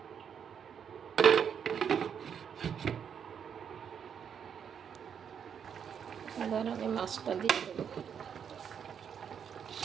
এবার আমি মাছটা দিয়ে দেবো।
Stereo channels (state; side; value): quieter; left; 7.7 dB